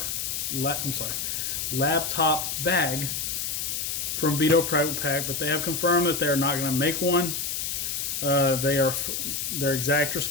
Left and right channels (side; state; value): left; noise; hiss, 2 dB below the sound